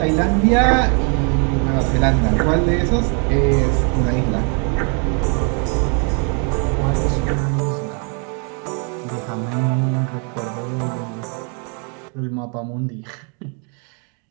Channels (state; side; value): quieter; left; 38.4 dB